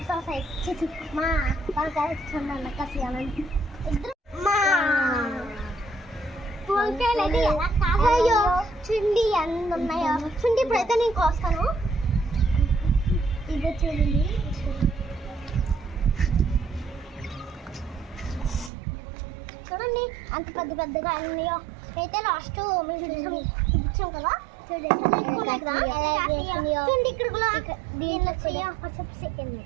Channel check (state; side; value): drops out; left; at 18.7 s